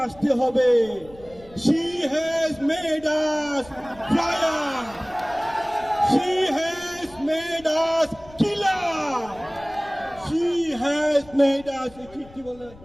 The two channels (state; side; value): noise; left; rumble, 23 dB below the sound